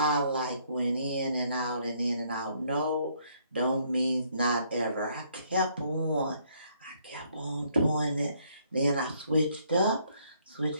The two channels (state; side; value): inverted; both; correlation -0.68